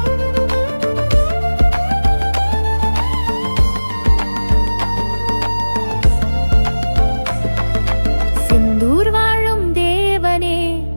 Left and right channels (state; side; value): inverted; both; correlation -1.00